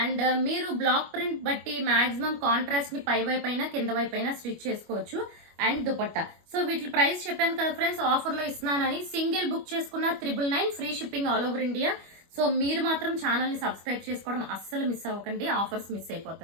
అండ్ మీరు బ్లాక్ ప్రింట్ బట్టి మాక్సిమం కాంట్రాస్ట్ ని పై వైపు అయినా కింద వైపు అయినా స్టిచ్ చేసుకోవచ్చు. అండ్ దుపట్టా. సో వీటి ప్రైస్ చెప్పాను కదా ఫ్రెండ్స్, ఆఫర్ లో ఇస్తున్నానని. సింగిల్ బుక్ చేసుకున్న 999, free shipping all over India. So మీరు మాత్రం ఛానల్ ని సబ్స్క్రైబ్ చేసుకోవడం అస్సలు మిస్ అవ్వకండి, ఆఫర్స్ మిస్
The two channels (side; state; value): left; late; 25 ms